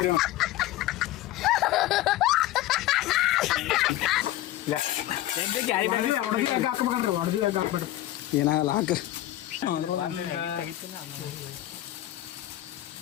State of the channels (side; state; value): right; quieter; 14.8 dB